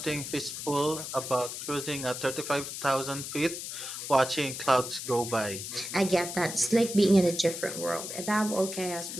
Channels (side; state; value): left; noise; hiss, 7 dB below the sound